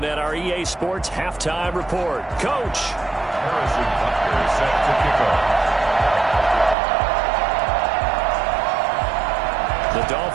at our EA Sports Halftime Report. Coach. Harrison Butker set to kick off. The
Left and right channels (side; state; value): left; drops out; at 6.8 s